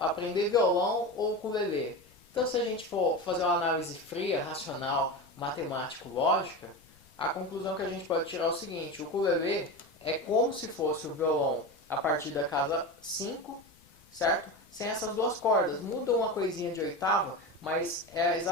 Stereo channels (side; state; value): left; noise; rumble, 29 dB below the sound